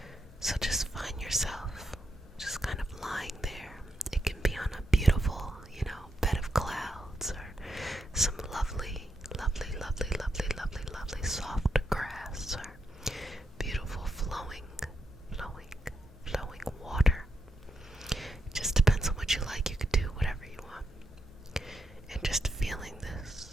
So just find yourself just kind of lying there. It can be on a beautiful, bed of clouds, or some lovely, lovely, lovely, lovely, lovely, lovely soft grass, or beautiful flowing water. It just depends on what you like. You could do whatever you want. And just feeling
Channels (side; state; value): both; normal; correlation 0.83